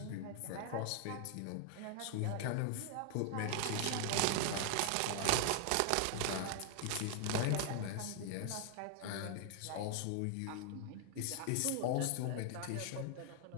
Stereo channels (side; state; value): both; different; correlation 0.00